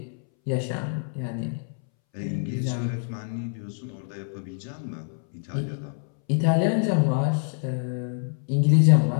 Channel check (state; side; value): silent; right; 61 dB below the other